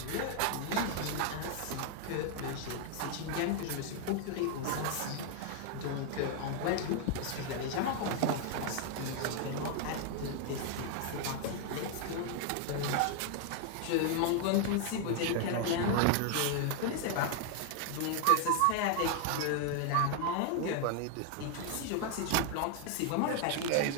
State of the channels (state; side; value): different; both; correlation 0.00